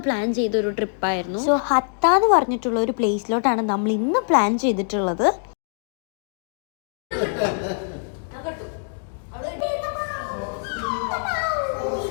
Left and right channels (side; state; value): right; silent; digital silence